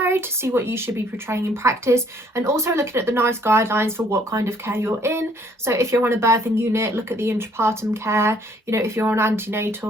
to see what you should be portraying in practice, and also looking at the nice guidelines for what kind of care you're in. So if you're on a birthing unit, look at the intrapartum care. You know, if you're on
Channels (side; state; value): both; normal; correlation 0.63